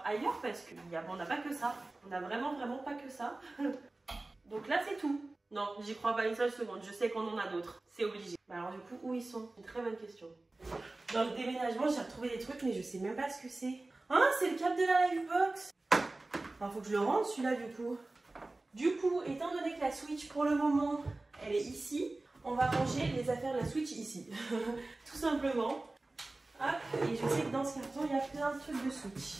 ailleurs parce qu'on n'a pas que ça. On n'a vraiment pas que ça. Donc là, c'est tout. Non, j'y crois pas une seule seconde. Je sais qu'on en a d'autres. C'est obligé. Bah alors du coup, où ils sont? Une très bonne question. Dans le déménagement, j'ai retrouvé des trucs, mais je sais même pas ce que c'est. Ah, c'est le câble de la Livebox. Alors, faut que je le rende celui-là du coup. Du coup, étant donné que la Switch pour le moment, elle est ici, on va ranger les affaires de la Switch ici. Tout simplement. Hop, et je sais que dans ce carton, il y a plein de trucs de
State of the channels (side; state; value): left; quieter; 3.0 dB